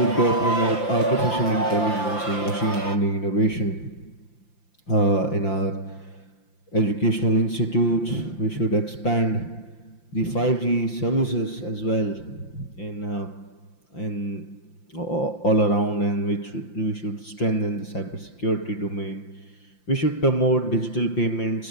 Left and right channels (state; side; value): late; right; 5.8 ms